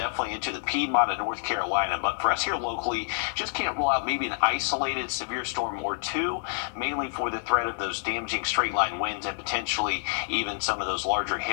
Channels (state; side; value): silent; right; digital silence